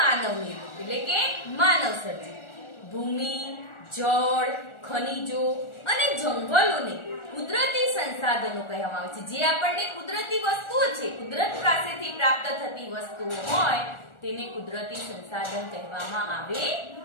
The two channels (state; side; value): late; right; 1.4 ms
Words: નિર્મિત એટલે કે માનવ સર્જિત. ભૂમિ, જળ, ખનિજો અને જંગલોને કુદરતી સંસાધનો કહેવામાં આવે છે. જે આપણને કુદરતી વસ્તુઓ છે, કુદરત પાસેથી પ્રાપ્ત થતી વસ્તુઓ હોય તેને કુદરતી સંસાધન કહેવામાં આવે